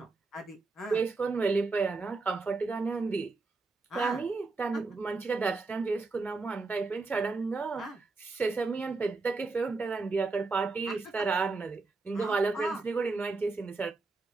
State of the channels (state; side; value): quieter; left; 3.8 dB